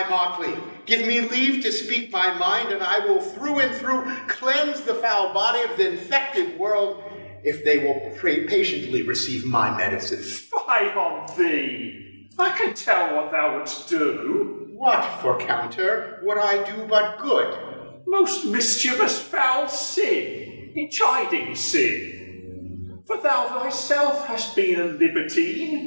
motley, give me leave to speak my mind, and I will through and through cleanse the foul body of the infected world, if they will patiently receive my medicine. Fie on thee! I can tell what thou wouldst do. What for counter would I do but good? Most mischievous foul sin, in chiding sin. For thou thyself hast been a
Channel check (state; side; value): inverted; both; correlation -1.00